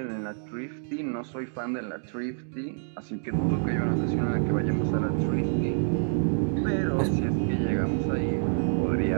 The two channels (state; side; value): silent; left; digital silence